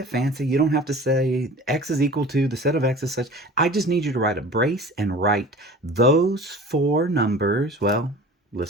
fancy. You don't have to say x is equal to the set of x is such. I just need you to write a brace and write those 4 numbers. Well,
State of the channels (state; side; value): normal; both; correlation 0.41